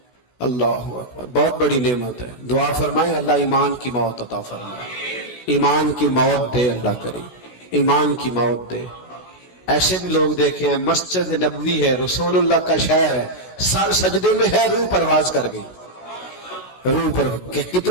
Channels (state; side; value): late; right; 16 ms